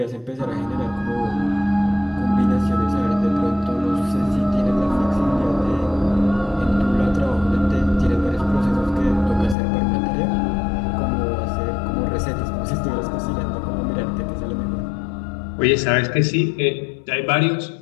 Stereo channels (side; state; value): right; drops out; at 9.6 s